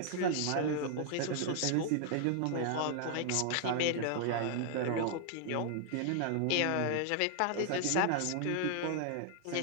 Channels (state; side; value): different; both; correlation 0.00